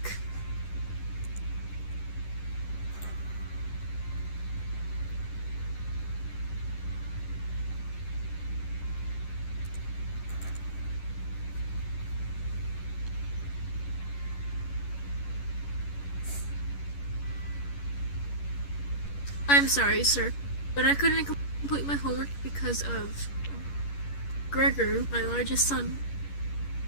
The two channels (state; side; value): late; right; 11 ms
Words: I'm sorry, sir, but I couldn't complete my homework because of Gregor, my largest son.